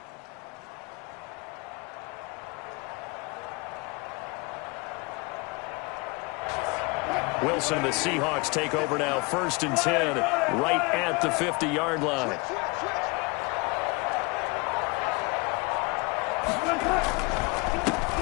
Wilson and the Seahawks take over now, 1st and 10, right at the 50-yard line.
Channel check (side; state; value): right; quieter; 28.0 dB